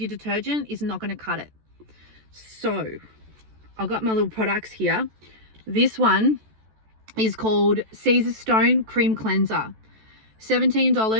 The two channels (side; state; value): left; late; 14 ms